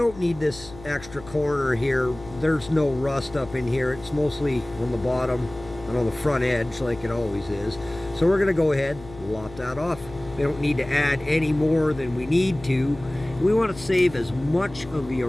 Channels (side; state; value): left; noise; hum, 17 dB below the sound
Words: need this extra corner here. There's no rust up in here. It's mostly on the bottom and on the front edge like it always is. So we're gonna go ahead and lop that off. We don't need to add any more than we need to. We want to save as much of the